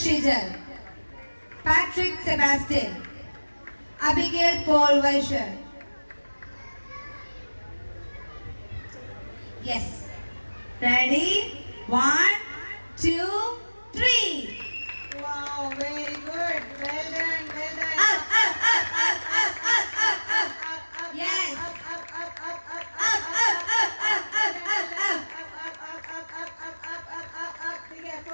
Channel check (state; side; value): inverted; both; correlation -1.00